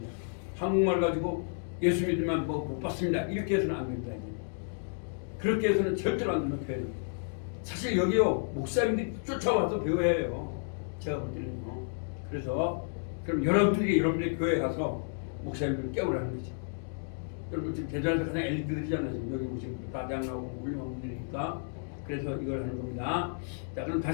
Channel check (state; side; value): silent; right; digital silence